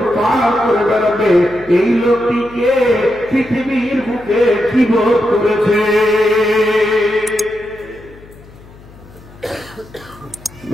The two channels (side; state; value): left; noise; hum, 22 dB below the sound